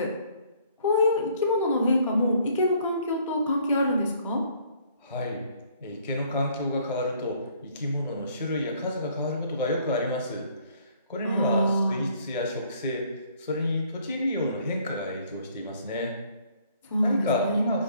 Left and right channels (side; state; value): both; inverted; correlation -0.61